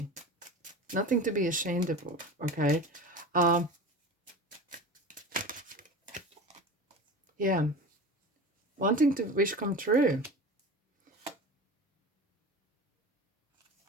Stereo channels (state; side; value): normal; both; correlation 0.32